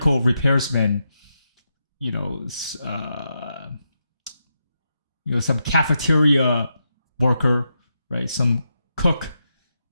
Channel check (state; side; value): inverted; both; correlation -0.85